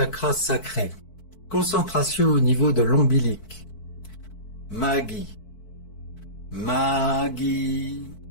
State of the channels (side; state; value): right; late; 4.6 ms